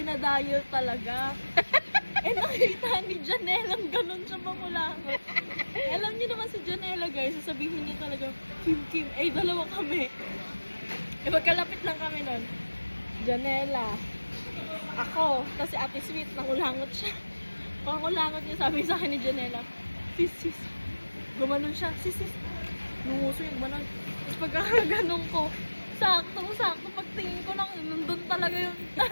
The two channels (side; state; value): both; inverted; correlation -1.00